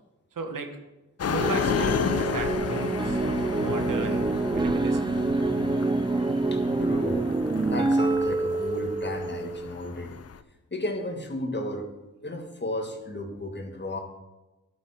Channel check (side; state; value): both; normal; correlation 0.60